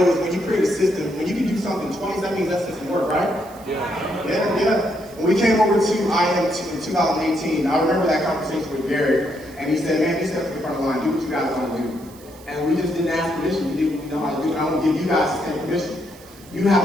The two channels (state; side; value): noise; right; hiss, 23 dB below the sound